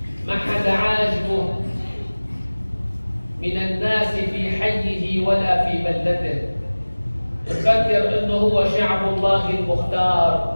ما حدا عاجبه من الناس في حيه ولا في بلدته، يفكر انه هو شعب الله المختار،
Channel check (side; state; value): both; inverted; correlation -1.00